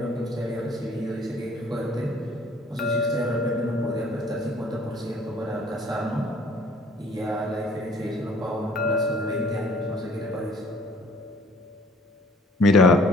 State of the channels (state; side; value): normal; both; correlation 0.56